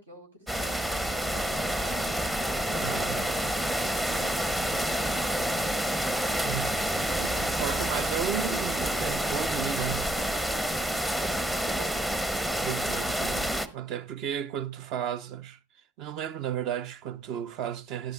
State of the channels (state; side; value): normal; both; correlation 0.75